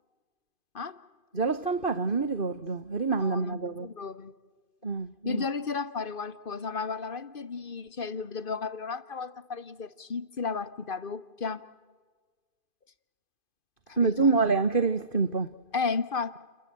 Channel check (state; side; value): late; right; 2.5 ms